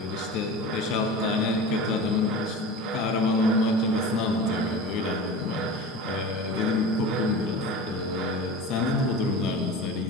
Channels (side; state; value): both; normal; correlation 0.32